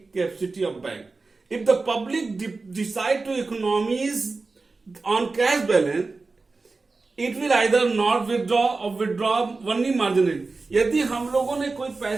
capacity of bank. If the public decide to economize on cash balance, it will either not withdraw or withdraw only marginally. यदि हम लोगों ने कोई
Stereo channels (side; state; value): left; quieter; 3.8 dB